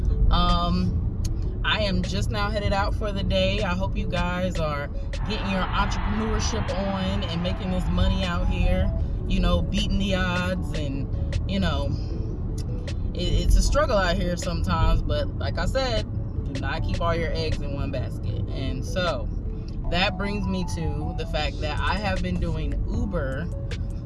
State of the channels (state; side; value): identical; both; correlation 1.00